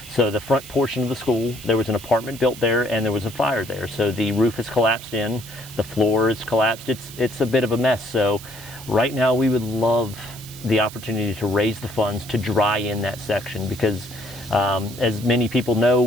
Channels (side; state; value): right; noise; hiss, 16 dB below the sound